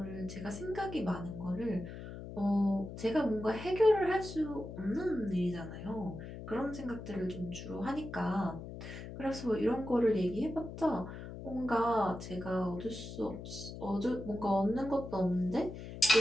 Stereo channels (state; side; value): noise; left; hum, 10 dB below the sound